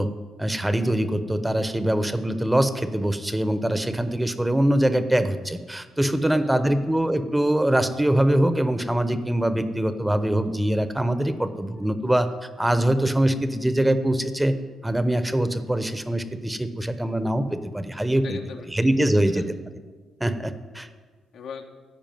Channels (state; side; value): normal; both; correlation 0.96